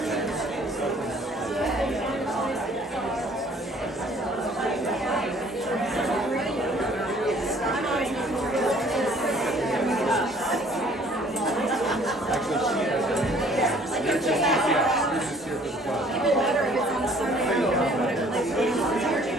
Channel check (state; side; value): normal; both; correlation 0.56